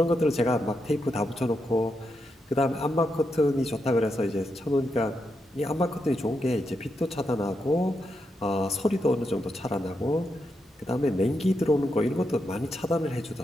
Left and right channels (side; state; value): both; normal; correlation 0.84